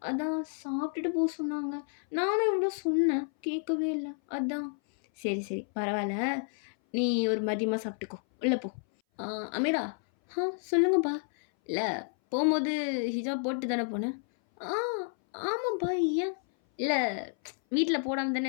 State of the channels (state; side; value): silent; right; 58 dB below the other